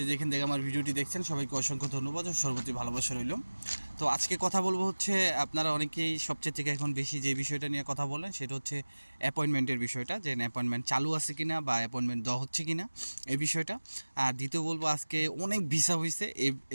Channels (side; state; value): both; inverted; correlation -1.00